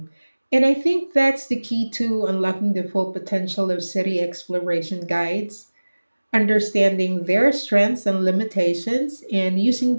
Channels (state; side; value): inverted; both; correlation -1.00